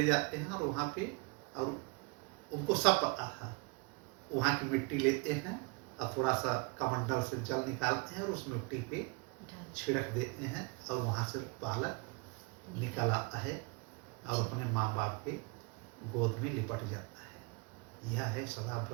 जाते हैं और वहाँ पे, और उनको सब पता था, वहाँ की मिट्टी लेते हैं और थोड़ा सा कमंडल से जल निकालते हैं और उस मिट्टी पे छिड़क देते हैं, और वहाँ से बालक निकल आता है और अपने माँ बाप के गोद में लिपट जाता है। यह है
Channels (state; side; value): quieter; left; 29.2 dB